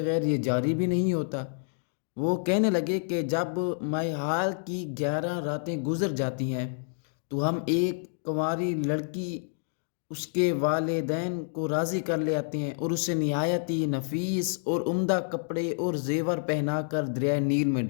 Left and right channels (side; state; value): right; silent; digital silence